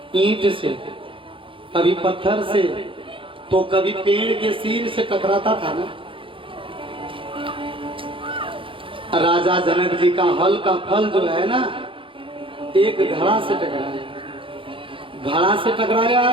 ईंट से, कभी पत्थर से, तो कभी पेड़ के सिर से टकराता था ना। राजा जनक जी का हल का फल जो है ना, एक घड़ा से टकराया। घड़ा से टकराया,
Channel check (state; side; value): late; left; 0.25 ms